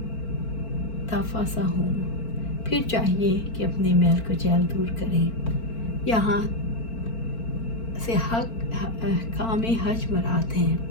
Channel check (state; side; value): late; right; 4.4 ms